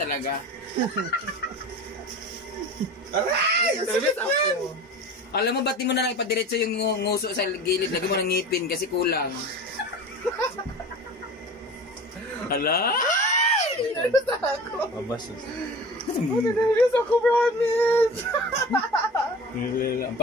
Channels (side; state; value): both; normal; correlation 0.36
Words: Aray! Service ako. Alam mo, ba't di mo na lang ipadiretso yung nguso sa gilid? Lagi mo ng ngipin kasi kulang. Hala? Nervous ako. Mabasos. Nervous ako, promise. Ang